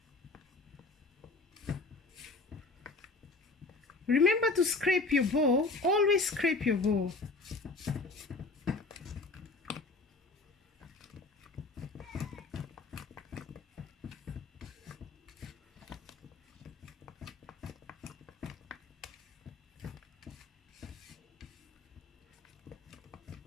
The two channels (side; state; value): right; quieter; 3.6 dB